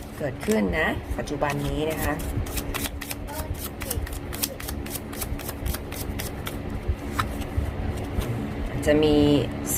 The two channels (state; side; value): identical; both; correlation 1.00